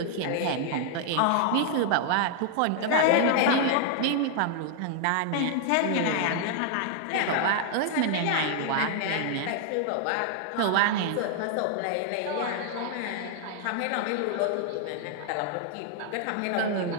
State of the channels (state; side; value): different; both; correlation -0.01